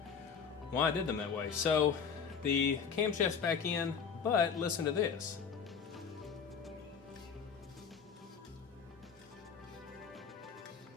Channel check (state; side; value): quieter; right; 6.4 dB